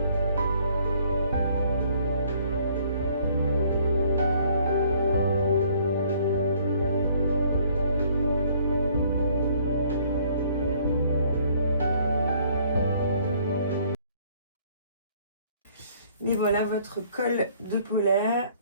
Mais voilà votre col de polaire,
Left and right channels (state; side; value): inverted; both; correlation -0.61